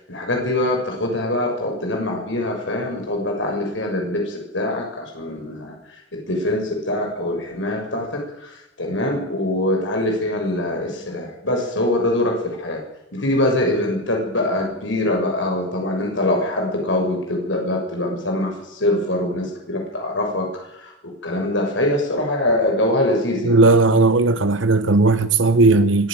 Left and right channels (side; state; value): both; normal; correlation 0.16